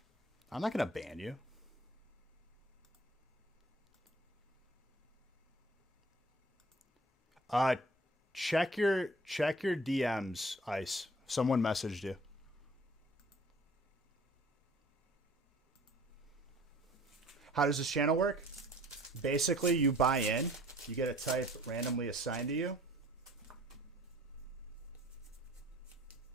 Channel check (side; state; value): both; normal; correlation 0.51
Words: I'm not gonna ban you. Check your DMs, Ice. Someone messaged you. How does this channel work? Basically, you buy in, you get a type randomly assigned to you.